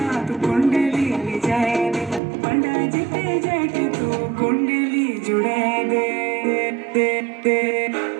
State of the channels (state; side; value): drops out; left; at 2.2 s